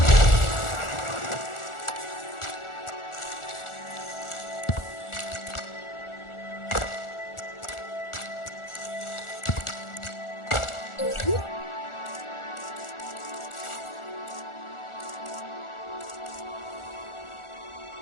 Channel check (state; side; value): late; right; 1.4 ms